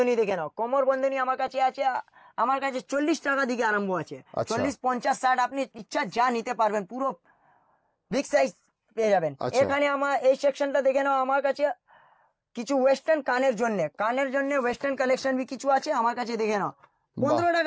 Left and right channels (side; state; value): both; identical; correlation 1.00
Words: দেখে নাও। কোমর বন্ধনী আমার কাছে আছে, আমার কাছে 40 টাকা দিকে আরম্ভ আছে। 40, 50, 60 আপনি ইচ্ছা যা নিতে পারবেন, পুরো বিগ সাইজ পেয়ে যাবেন। এখানে আমার এই সেকশনটা দেখে নাও। আমার কাছে কিছু ওয়েস্টার্ন কানের জন্য ওয়েস্টার্ন কালেকশন भी কিছু আছে আমার কাছে, দেখে নাও। 15